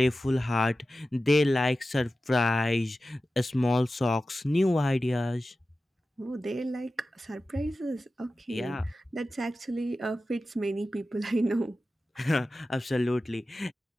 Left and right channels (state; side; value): normal; both; correlation 0.94